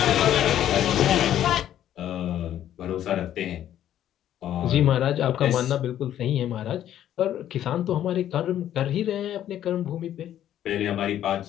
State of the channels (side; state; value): right; quieter; 11.4 dB